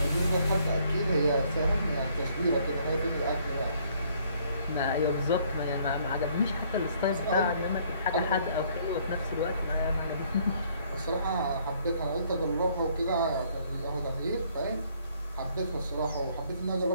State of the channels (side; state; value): both; inverted; correlation -0.64